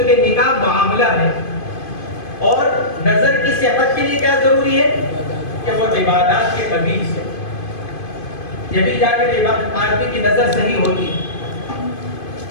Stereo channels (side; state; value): right; late; 2.5 ms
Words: نکاح معاملہ ہے، اور نظر کی صحت کے لیے کیا ضروری ہے کہ وہ عبادات کے قبیل سے، یہ بھی جا کر آدمی کی نظر صحیح ہوتی ہے۔